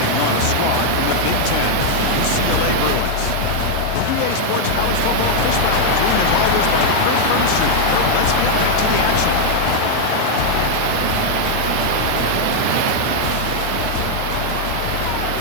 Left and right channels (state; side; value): different; both; correlation 0.00